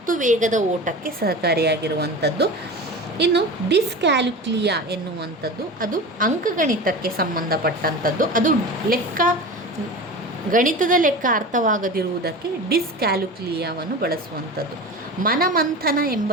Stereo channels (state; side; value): normal; both; correlation 0.31